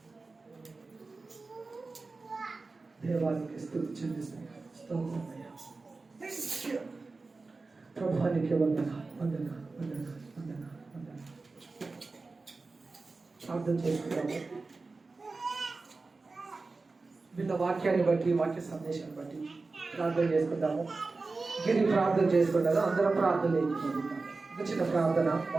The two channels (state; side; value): quieter; left; 3.8 dB